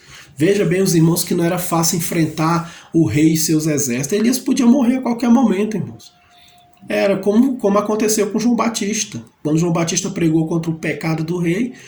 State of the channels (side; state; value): both; identical; correlation 1.00